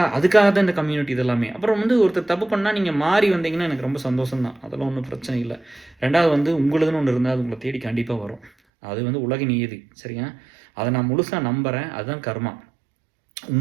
தான் இந்த கம்யூனிட்டி இதெல்லாமே. அப்புறம் வந்து ஒருத்தர் தப்பு பண்ணால் நீங்கள் மாறி வந்தீங்கன்னா எனக்கு ரொம்ப சந்தோஷம் தான். அதெல்லாம் ஒன்றும் பிரச்சனை இல்லை. 2வது வந்து உங்களுதுன்னு ஒன்று இருந்தால் அது உங்களை தேடி கண்டிப்பாக வரும். அது வந்து உலக நியதி. சரியா? அதை நான் முழுசாக நம்புகிறேன். அதுதான் கர்மா.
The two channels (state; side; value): drops out; left; at 8.5 s